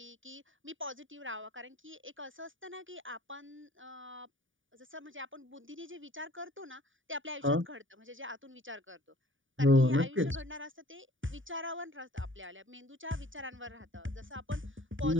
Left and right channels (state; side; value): late; left; 0.57 ms